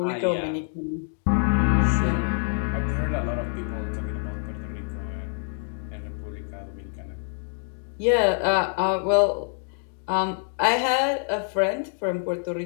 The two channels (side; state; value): right; silent; 61 dB below the other